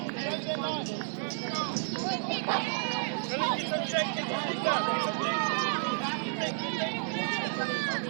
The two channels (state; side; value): silent; left; digital silence